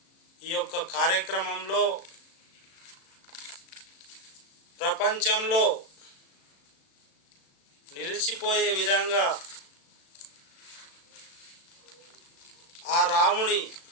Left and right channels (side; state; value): right; late; 36 ms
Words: ఈ యొక్క కార్యక్రమంలో ప్రపంచంలో నిలిచిపోయే విధంగా ఆ రాముని